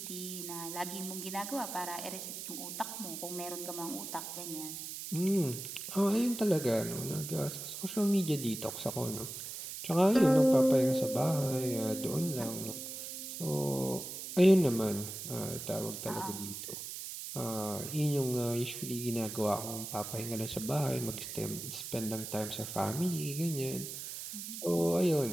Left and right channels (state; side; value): noise; right; hiss, 8 dB below the sound